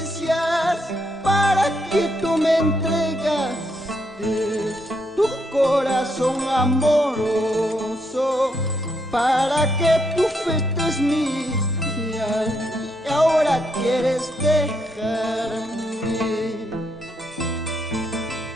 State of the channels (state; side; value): normal; both; correlation 0.77